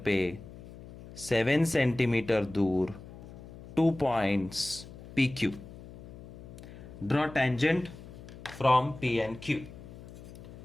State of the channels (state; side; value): noise; left; hum, 16 dB below the sound